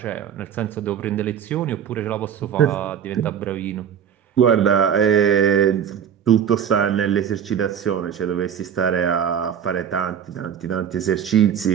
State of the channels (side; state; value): left; quieter; 8.5 dB